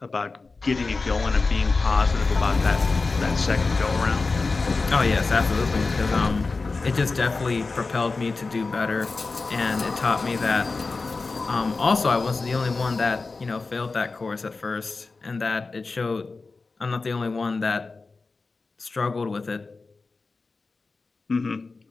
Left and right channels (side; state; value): right; quieter; 3.9 dB